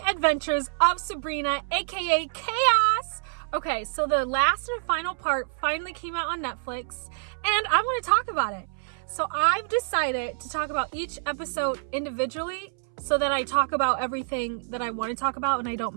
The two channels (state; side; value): silent; left; 60 dB below the other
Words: adventures of Sabrina, aka Chaos. Okay, so the last and final part finally came out on Netflix, and I want to talk about it. So I've decided to talk about each episode individually so that I talk about everything that I want to talk about and I